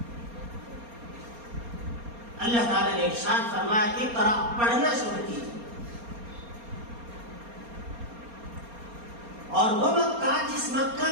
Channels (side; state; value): left; late; 4.3 ms